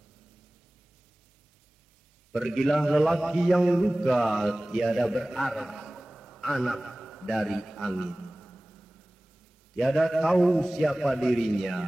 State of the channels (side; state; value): both; normal; correlation 0.98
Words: Pergilah lelaki yang luka tiada berarah, anak dari angin. Tiada tahu siapa